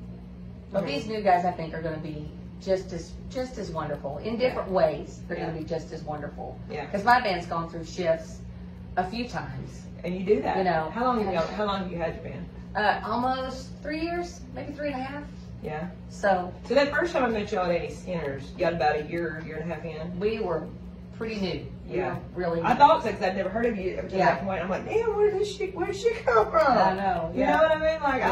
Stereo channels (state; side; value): identical; both; correlation 1.00